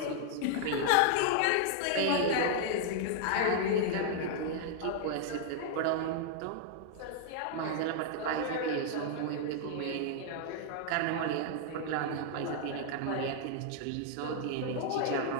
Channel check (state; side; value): different; both; correlation -0.01